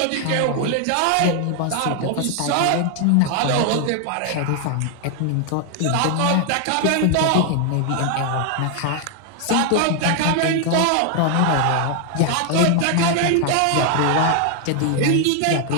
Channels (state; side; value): different; both; correlation 0.00